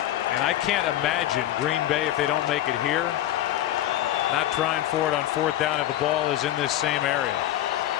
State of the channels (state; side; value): quieter; right; 13.0 dB